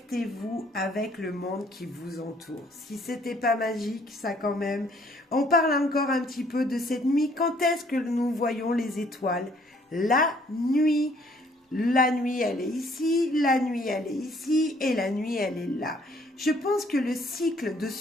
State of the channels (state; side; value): normal; both; correlation 0.62